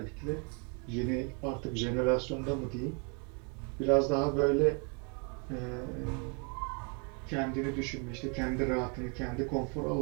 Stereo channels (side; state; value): left; quieter; 34.9 dB